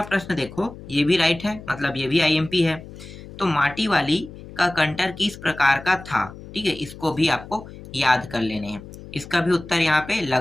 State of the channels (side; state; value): left; noise; hum, 15 dB below the sound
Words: प्रश्न देखो, ये भी राइट है, मतलब ये भी आईएमपी है। तो माटी वाली का कंटर किस प्रकार का था, ठीक है, इसको भी आपको याद कर लेने हैं। इसका भी उत्तर यहाँ पे